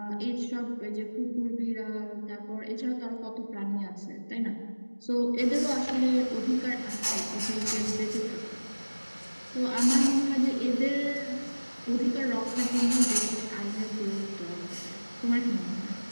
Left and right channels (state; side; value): inverted; both; correlation -1.00